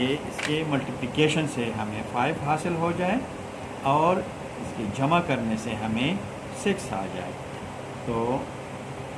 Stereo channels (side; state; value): both; identical; correlation 1.00